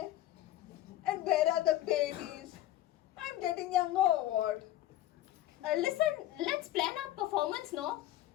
And where are the babies? I'm getting younger or what? Listen, let's plan our performance, no?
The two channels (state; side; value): quieter; right; 14.0 dB